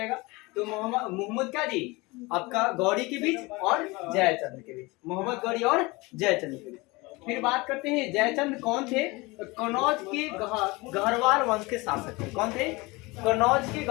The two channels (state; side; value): quieter; right; 23.9 dB